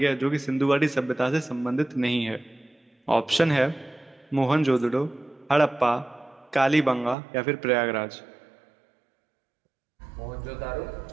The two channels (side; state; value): left; drops out; at 7.2 s